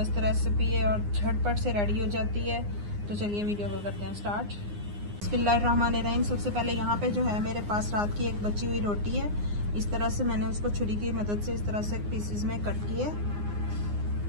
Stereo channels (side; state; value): left; late; 9.7 ms